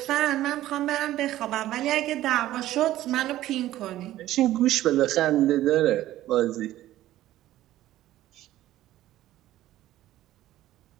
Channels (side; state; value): left; quieter; 14.4 dB